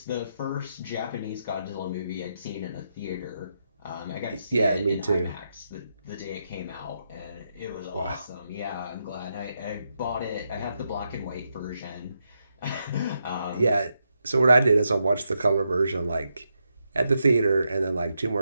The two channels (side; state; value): both; inverted; correlation -0.83